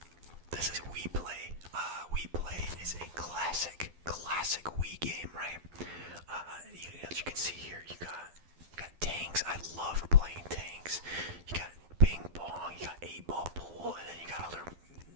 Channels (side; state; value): left; late; 12 ms